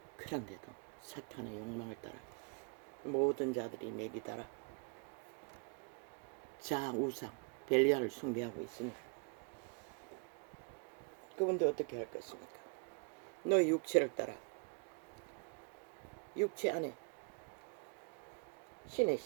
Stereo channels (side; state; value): left; quieter; 35.8 dB